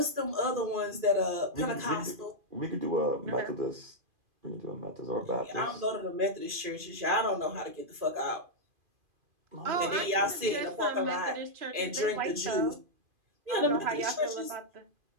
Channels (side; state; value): left; late; 2.5 ms